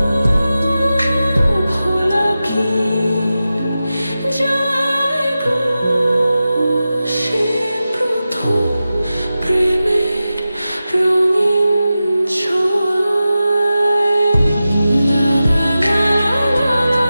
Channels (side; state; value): both; inverted; correlation -0.93